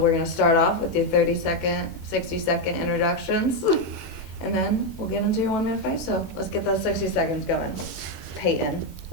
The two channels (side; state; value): right; late; 21 ms